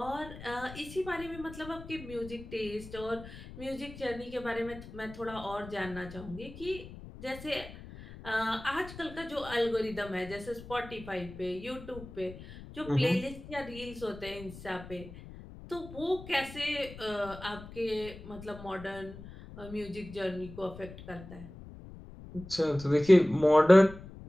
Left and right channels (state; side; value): noise; left; rumble, 15 dB below the sound